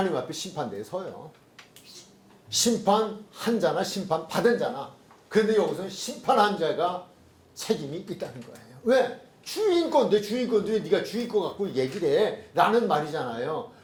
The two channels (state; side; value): identical; both; correlation 1.00